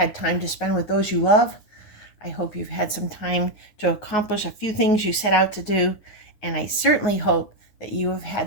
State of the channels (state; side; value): late; right; 9.5 ms